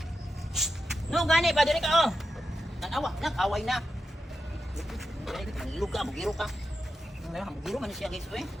No gani pa diri ka oh. Nag-away na. Mangilog ka, bugiro ka. Mugiro man siya guys oy.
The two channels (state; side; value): normal; both; correlation 0.89